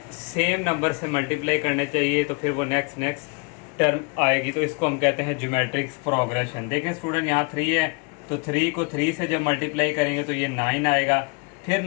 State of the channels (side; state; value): right; quieter; 31.8 dB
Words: सेम नंबर से मल्टीप्लाई करने चाहिए तो फिर वो नेक्स्ट टर्म आएगी, तो इसको हम कहते हैं ज्योमेट्रिक प्रोग्रेशन। देखिए स्टूडेंट यहाँ 3 है तो 3 को 3 से जब मल्टीप्लाई करेंगे तो ये 9 आएगा, फिर